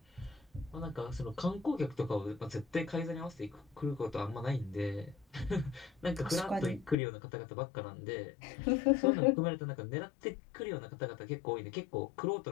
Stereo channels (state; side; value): drops out; right; at 7.0 s